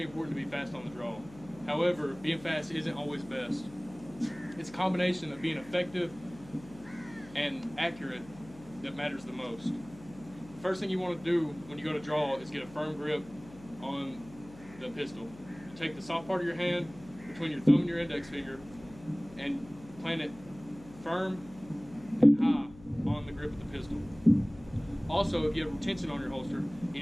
important to be fast on the draw. However, being fast isn't always best. It's a combination of being effective and accurate that matters the most. The first thing you want to do when you go to draw is get a firm grip on the pistol. You take the soft part of your hand between your thumb and your index finger and plant it firm and high on the grip of the pistol. Also, if you have retention on your holster, you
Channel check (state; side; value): noise; left; hum, 19 dB below the sound